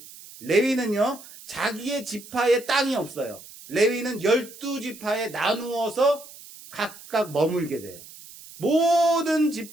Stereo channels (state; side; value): noise; right; hiss, 18 dB below the sound